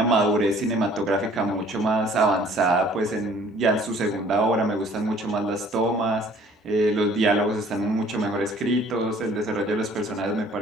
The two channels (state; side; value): normal; both; correlation 0.55